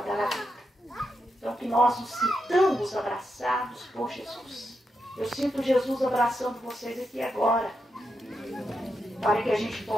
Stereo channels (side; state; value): both; normal; correlation 0.85